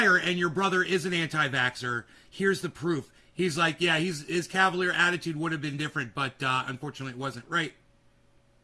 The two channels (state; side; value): identical; both; correlation 1.00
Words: and your brother is an anti-vaxxer. Here's the proof. He's like, yeah, his cavalier attitude would have been different, but unfortunately it wasn't. Right.